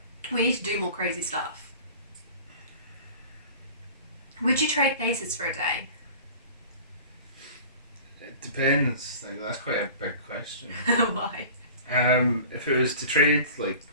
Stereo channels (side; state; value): both; inverted; correlation -0.42